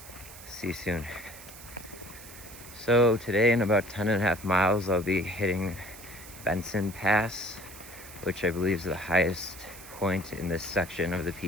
See you soon. So today in about 10.5 miles, I'll be hitting Benson Pass, which I believe is the highest point in this section of the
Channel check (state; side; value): noise; right; hiss, 16 dB below the sound